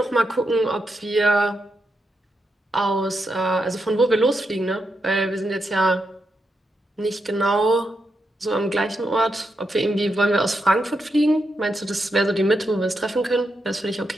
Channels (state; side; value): normal; both; correlation 0.84